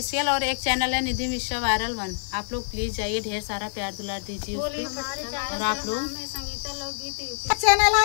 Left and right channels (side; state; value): right; silent; 61 dB below the other